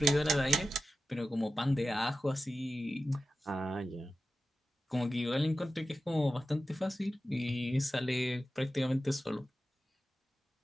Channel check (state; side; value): normal; both; correlation 0.93